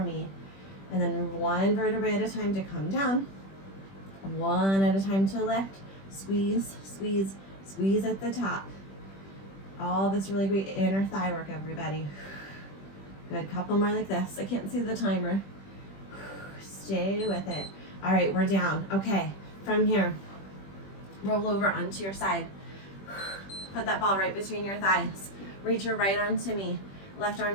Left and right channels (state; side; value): late; right; 21 ms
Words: me. And then one vertebrae at a time to come down. One at a time to lift. Squeeze, squeeze, squeeze at the top. All this really great inner thigh work, everybody. Good, couple more like this. I can't see the timer. Stay with it. All right, we're down. Okay, from here, roll over onto your side. Put that ball right between your thighs. Reach your right arm to me, left